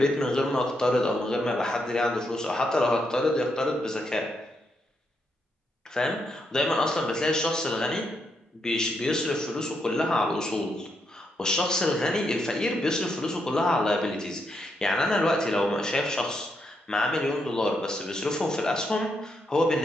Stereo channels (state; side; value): normal; both; correlation 0.80